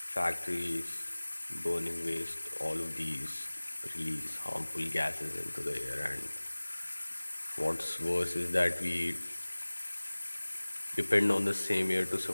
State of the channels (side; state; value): both; inverted; correlation -1.00